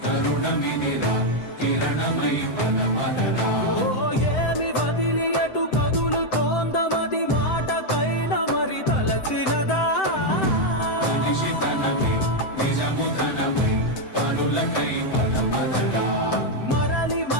తరుణమిదిరా కిరణమై పద పదరా ఏమి వదిలి ఎటు కదులుతోందమది మాటకైన మరి తలచినదా మనిషితనమై నిజముతనమై పనులకై పద పదరా మరలి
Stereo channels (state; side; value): late; right; 7.8 ms